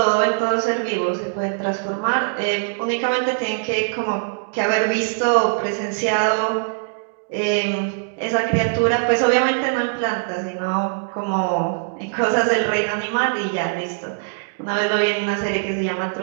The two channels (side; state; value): left; silent; digital silence